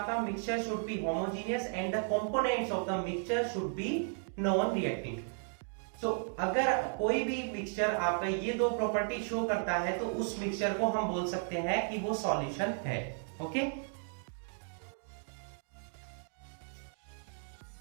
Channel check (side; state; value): left; silent; 55 dB below the other